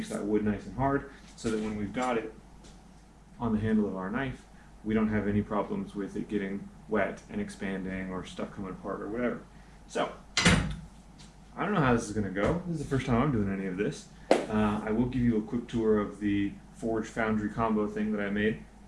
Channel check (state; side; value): identical; both; correlation 1.00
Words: that wood nice and hard so that when we've got it on the handle of our knife, we don't have any problems with it getting wet and expanding or stuff coming apart or whatever. So, I don't know how this is going to go. This is the first time I'm doing any of this. I will give you a quick tour of the Forge Foundry combo thing that I made.